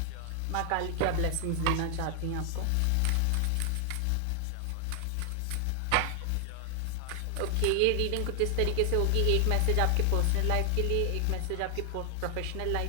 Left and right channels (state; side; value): different; both; correlation 0.00